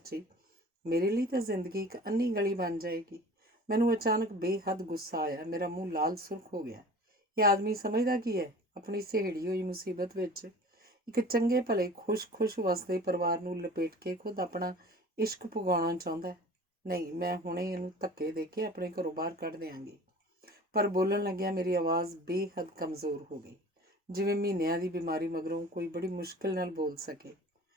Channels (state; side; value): normal; both; correlation 0.42